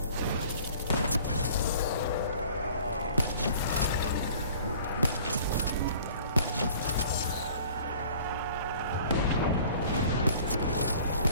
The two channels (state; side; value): inverted; both; correlation -0.49